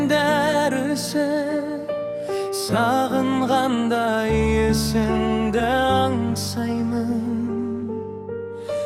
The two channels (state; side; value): identical; both; correlation 1.00